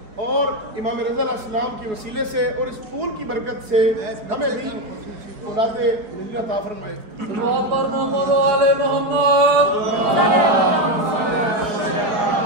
और इमाम रज़ा अलैहिस्सलाम के वसीले से और इस फूल की बरकत से हमें भी औलादे मिलना अता फरमाए।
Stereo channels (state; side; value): late; left; 4.5 ms